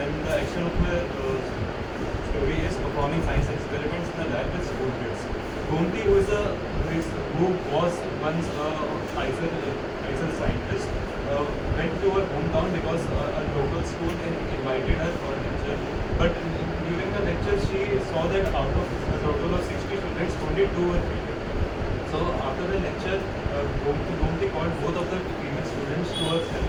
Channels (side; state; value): both; identical; correlation 1.00